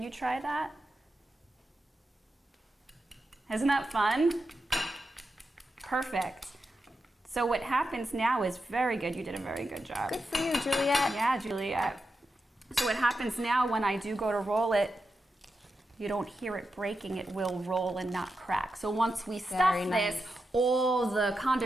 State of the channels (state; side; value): normal; both; correlation 0.88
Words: you try that? Isn't that fun? Perfect. So what happens now is very good. You did a very good job. Good for you, Juliette. Yeah, Juliette. So what happens now when I do go to roll it, you don't hear it breaking, it will roll and not crack. So once we stuff this, all the